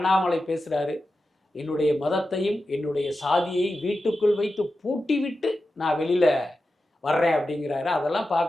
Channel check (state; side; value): normal; both; correlation 0.92